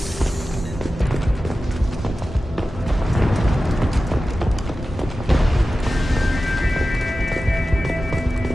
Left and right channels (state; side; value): normal; both; correlation 0.94